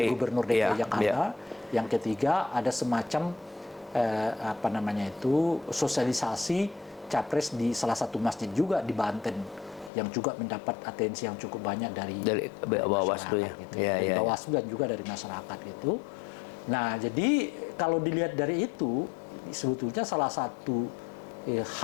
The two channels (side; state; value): right; drops out; at 9.9 s